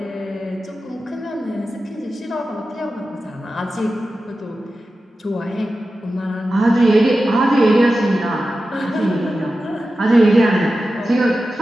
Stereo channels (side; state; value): both; normal; correlation 0.93